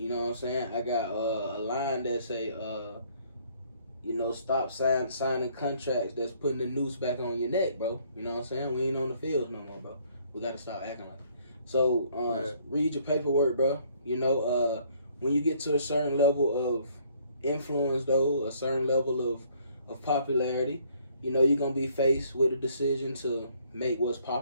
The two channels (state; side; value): inverted; both; correlation -0.63